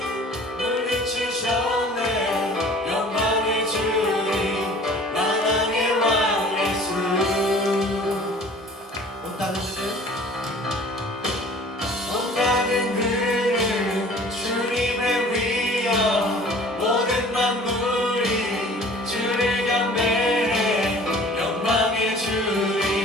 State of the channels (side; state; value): both; normal; correlation 0.48